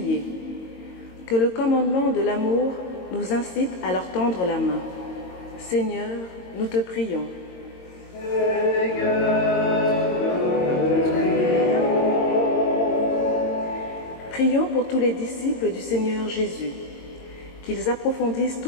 Que le commandement de l'amour nous incite à leur tendre la main. Seigneur, nous te prions. Prions pour tous les disciples du Seigneur Jésus, qu'ils approfondissent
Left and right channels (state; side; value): late; right; 22 ms